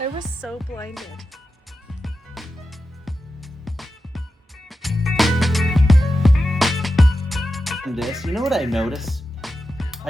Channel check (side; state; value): both; normal; correlation 0.91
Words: was so blinded. this. You know what I notice?